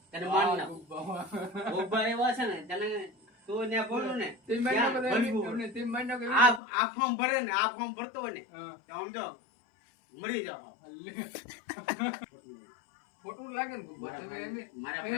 તને માન ના ગોબા એવા છે ને તને તું ને બોલું ને આ ફોર્મ ભરે ને આ ફોર્મ ભરતો હોય ને તો સમજો મરી જાવ. ખોટું લાગે ને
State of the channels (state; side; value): drops out; right; at 6.6 s